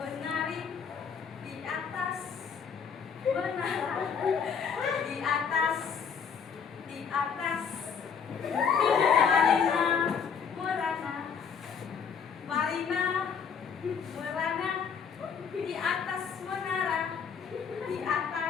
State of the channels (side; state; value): right; quieter; 6.6 dB